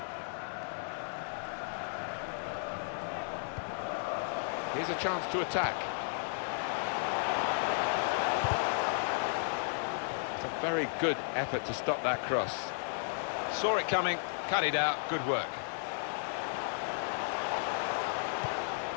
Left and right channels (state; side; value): silent; right; 55 dB below the other